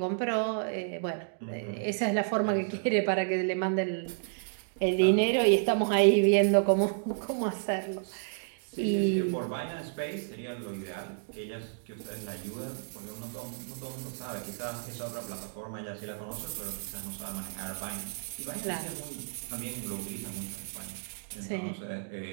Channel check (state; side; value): silent; left; digital silence